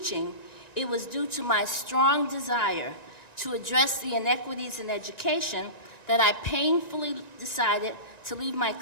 it was due to my strong desire to address the inequities in education that I painfully decided to leave my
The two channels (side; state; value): right; late; 1.9 ms